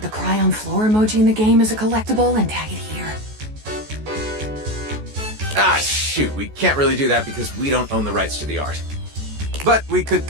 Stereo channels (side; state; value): left; late; 14 ms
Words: the cry on floor emoji in the game as a collectible and tag it here. Ah, shoot, we can't really do that because we don't own the rights to the art. But we could